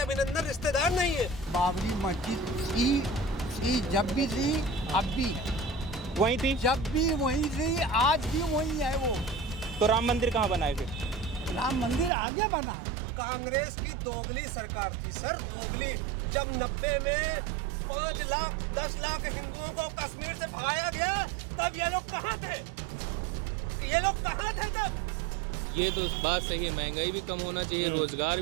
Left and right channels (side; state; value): left; drops out; at 12.1 s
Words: रिश्तेदार नहीं है। बाबरी मस्जिद की जब भी थी अब भी वहीं थी, जब भी वहीं थी, आज भी वहीं है वो। तो राम मंदिर कहाँ बनाए फिर? राम मंदिर आगे बना है। कांग्रेस की दोगली सरकार थी सर, दोगली। जब 90 में 5 लाख 10 लाख हिंदुओं को कश्मीर से भगाया गया, तब ये लोग कहाँ थे? ये लोग कहाँ थे तब? ये तो बात सही है, महंगाई भी कम होना चाहिए, रोजगार